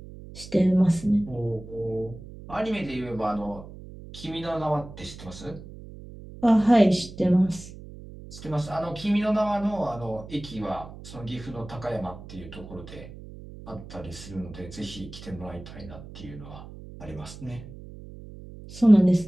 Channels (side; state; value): right; noise; hum, 15 dB below the sound